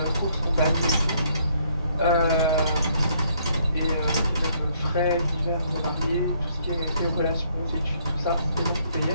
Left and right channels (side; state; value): both; inverted; correlation -0.68